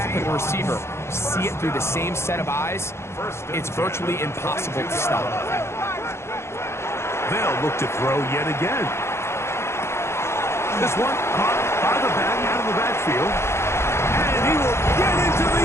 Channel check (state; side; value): late; right; 0.13 ms